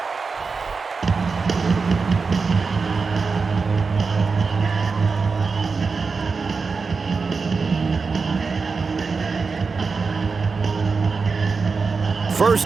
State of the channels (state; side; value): quieter; left; 4.7 dB